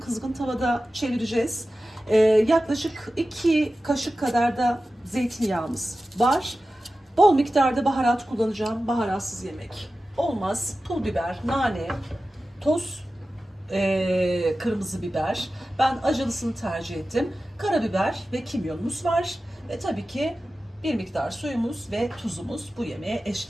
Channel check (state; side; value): normal; both; correlation 0.94